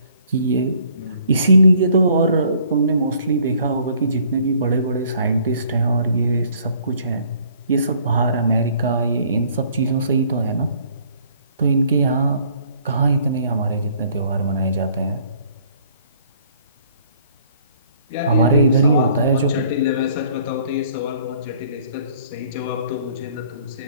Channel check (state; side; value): inverted; both; correlation -0.60